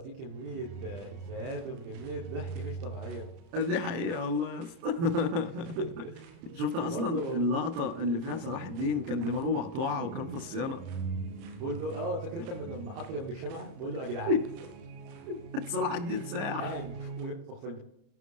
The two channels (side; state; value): left; late; 30 ms